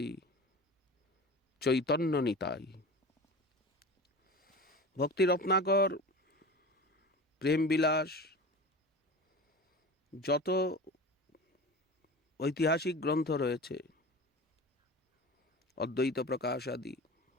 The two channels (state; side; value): normal; both; correlation 0.33